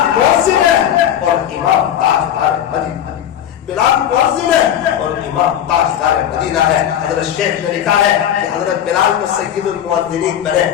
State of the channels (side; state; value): right; quieter; 10.3 dB